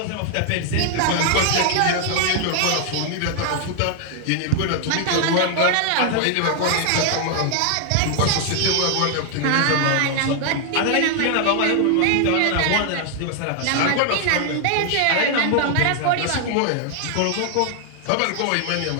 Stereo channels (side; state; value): both; different; correlation 0.00